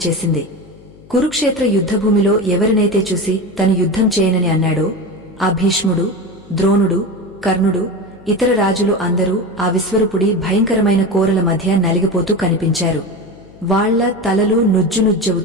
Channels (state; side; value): noise; left; hum, 24 dB below the sound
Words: కురుక్షేత్ర యుద్ధభూమిలో ఎవరినైతే చూసి తను యుద్ధం చేయనని అన్నాడో ఆ భీష్ముడు, ద్రోణుడు, కర్ణుడు, ఇతర రాజులు అందరూ ఆ విశ్వరూపుడి భయంకరమైన కోరల మధ్య నలిగిపోతూ కనిపించారు. వాళ్ల తలలు